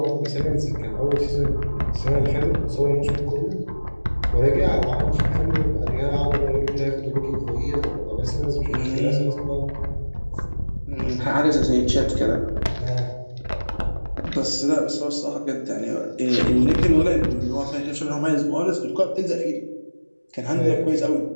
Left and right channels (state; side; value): inverted; both; correlation -1.00